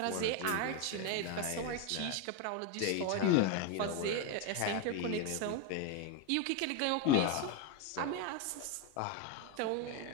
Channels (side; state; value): both; different; correlation 0.02